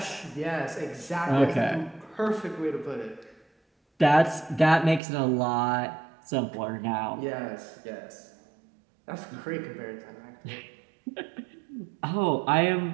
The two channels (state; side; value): drops out; left; at 5.0 s